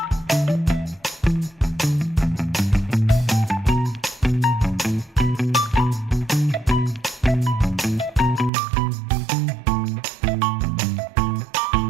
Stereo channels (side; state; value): left; drops out; at 8.5 s